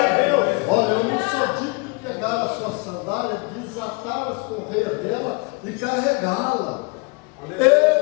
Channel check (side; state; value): right; quieter; 29.4 dB